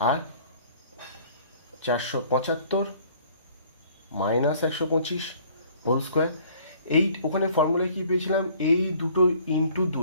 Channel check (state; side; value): inverted; both; correlation -0.55